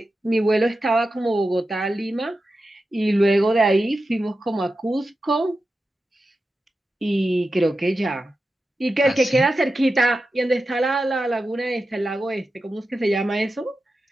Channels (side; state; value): both; normal; correlation 0.91